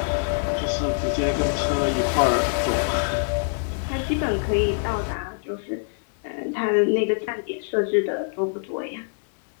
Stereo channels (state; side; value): silent; right; digital silence